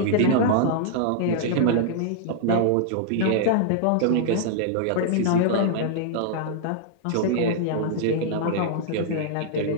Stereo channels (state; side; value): different; both; correlation -0.01